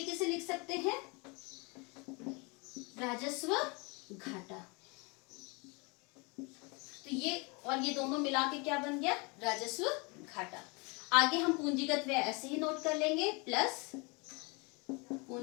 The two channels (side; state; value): right; quieter; 29.5 dB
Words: से लिख सकते हैं, राजस्व घाटा। तो ये और ये दोनों मिला के क्या बन गया, राजस्व घाटा। आगे हम पूंजीगत व्यय ऐसे ही नोट कर लेंगे, प्लस